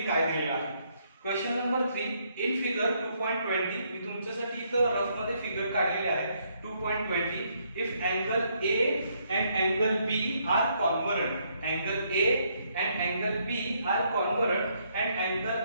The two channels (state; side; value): inverted; both; correlation -0.72